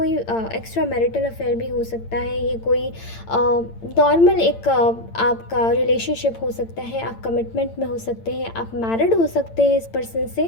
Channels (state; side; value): late; right; 8.8 ms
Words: एक्स्ट्रा मैरिटल अफेयर भी हो सकता है, ये कोई नॉर्मल एक आपका रिलेशनशिप हो सकता है, आप कमिटमेंट में हो सकते हैं, आप मैरिड हो सकते हैं इस पर्सन से।